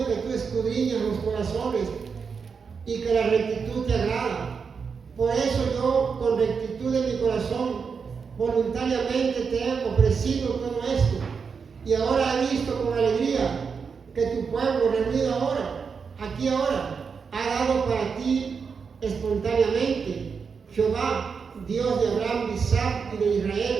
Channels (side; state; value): left; quieter; 5.7 dB